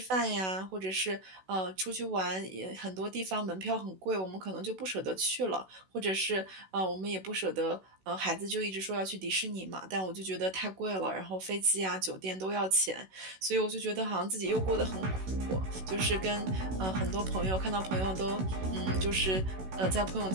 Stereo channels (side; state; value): left; late; 16 ms